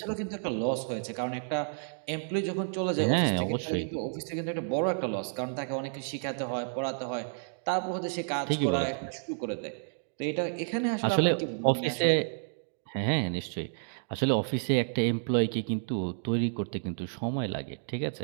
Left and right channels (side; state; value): left; silent; digital silence